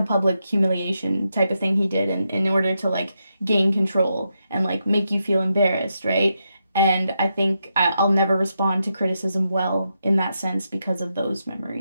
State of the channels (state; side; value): inverted; both; correlation -0.84